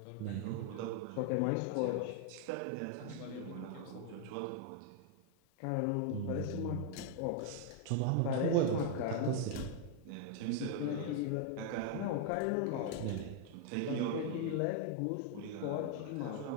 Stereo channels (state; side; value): different; both; correlation 0.00